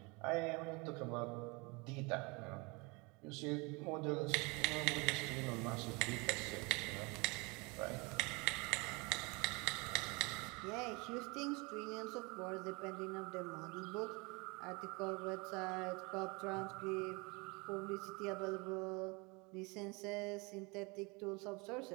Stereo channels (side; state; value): left; quieter; 28.0 dB